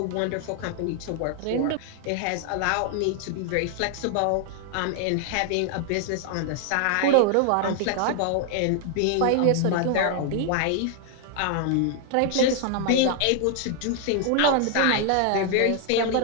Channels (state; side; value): different; both; correlation 0.00